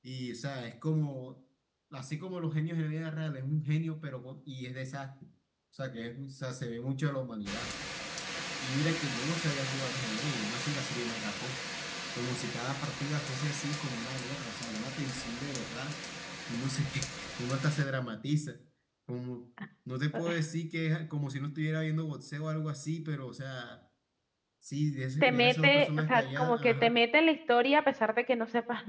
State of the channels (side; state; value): both; identical; correlation 1.00